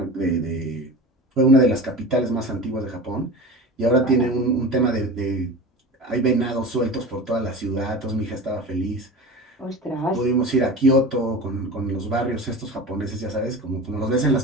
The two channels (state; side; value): normal; both; correlation 0.32